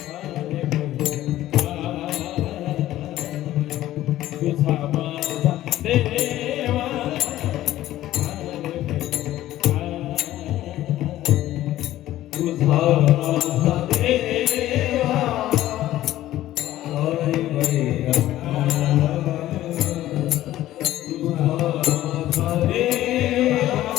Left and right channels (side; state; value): right; quieter; 14.2 dB